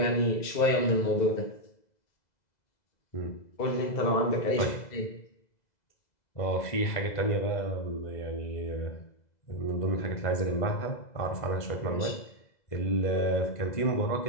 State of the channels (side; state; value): right; late; 2.0 ms